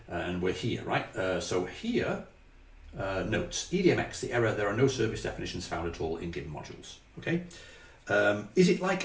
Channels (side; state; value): both; identical; correlation 1.00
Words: And we're here, right? So here, notes. EDMX, the error, there are no service definitions found at all in given modules. Okay. Is it like